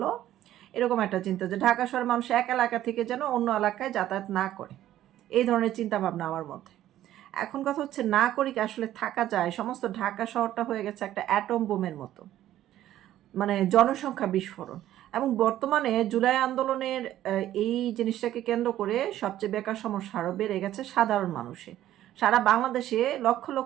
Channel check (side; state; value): left; quieter; 13.0 dB